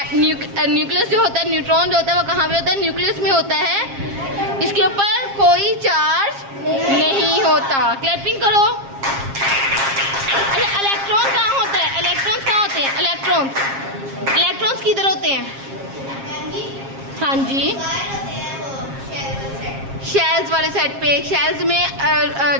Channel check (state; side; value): late; left; 7.4 ms